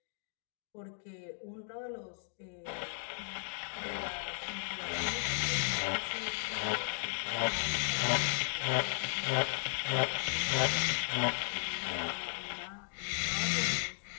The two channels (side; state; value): right; silent; digital silence